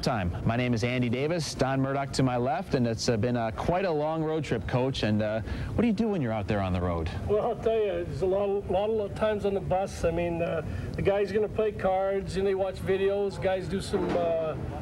Time. My name is Andy Davis, Don Murdoch to my left, and it's been quite a long road trip, Coach. And what do you do when you're out there on the road? Well, I'll tell you, there's a lot of times on the bus. I mean, the guys are going to play cards, and they watch videos. Guys do some,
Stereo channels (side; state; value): both; identical; correlation 1.00